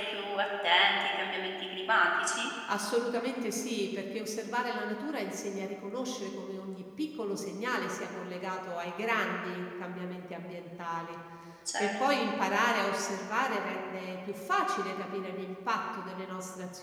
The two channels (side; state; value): both; identical; correlation 1.00